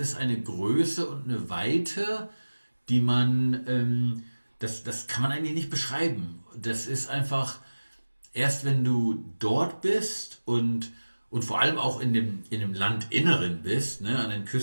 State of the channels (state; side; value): inverted; both; correlation -1.00